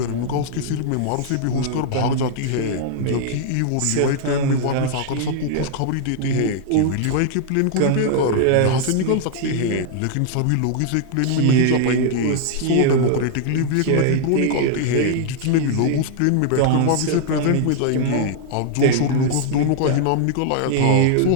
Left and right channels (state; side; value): different; both; correlation -0.01